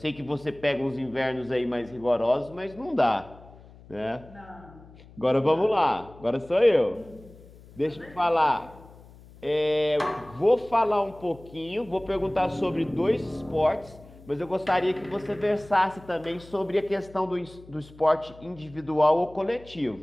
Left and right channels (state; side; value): noise; left; hum, 22 dB below the sound